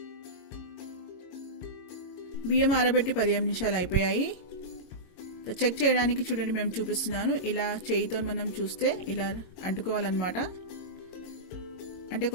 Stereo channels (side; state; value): right; late; 22 ms